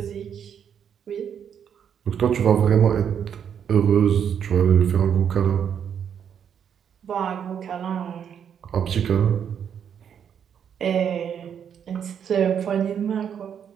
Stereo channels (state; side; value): quieter; left; 8.2 dB